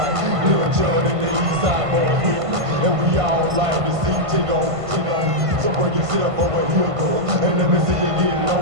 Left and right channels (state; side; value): late; left; 1.5 ms